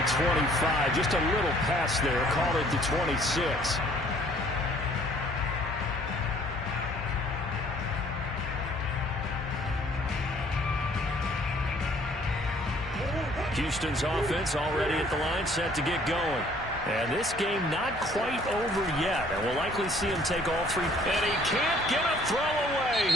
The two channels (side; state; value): both; normal; correlation 0.58